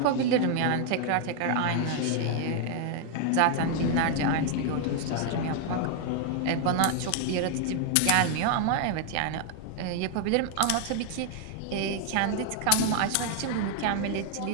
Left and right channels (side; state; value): both; different; correlation 0.00